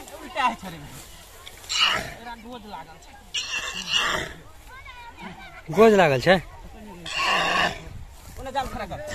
उल्टा है छरे एरा गोज लागल छै गोज लागल छै ओने जाल खड़ा कर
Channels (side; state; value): both; identical; correlation 1.00